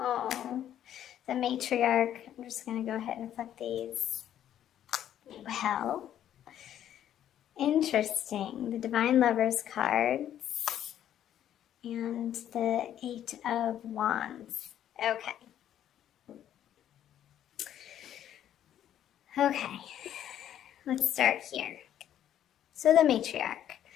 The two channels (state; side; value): quieter; right; 10.9 dB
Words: the Matriarch. I'm just going to go ahead and flip these. Well, interesting. The Divine Lovers cards and the Eight of Wands. Okay. Okay, let's start here. So the Matriarch.